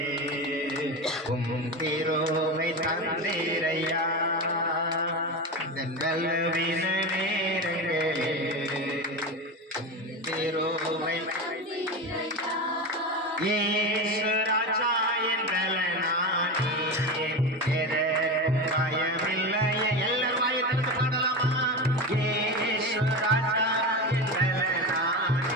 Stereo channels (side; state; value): both; normal; correlation 0.21